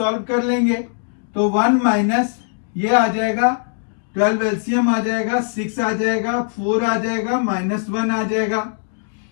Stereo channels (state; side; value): silent; right; digital silence